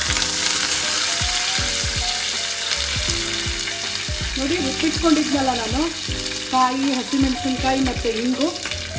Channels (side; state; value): both; identical; correlation 1.00